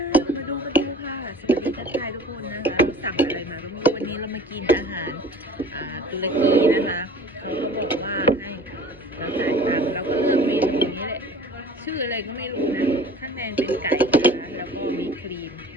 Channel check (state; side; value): normal; both; correlation 0.44